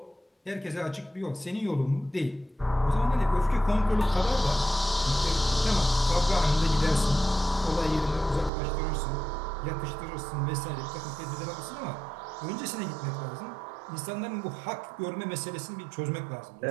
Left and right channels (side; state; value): left; drops out; at 8.5 s